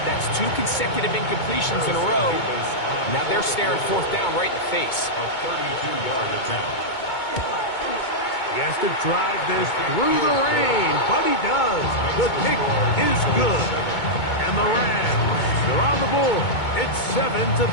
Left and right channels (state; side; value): late; right; 2.2 ms